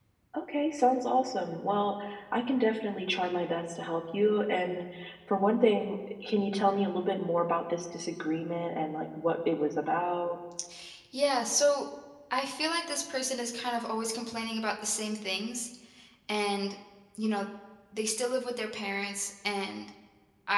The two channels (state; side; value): identical; both; correlation 1.00